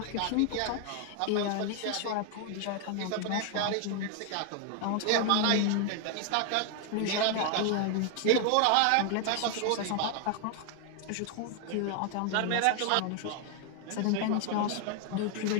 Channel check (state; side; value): different; both; correlation 0.00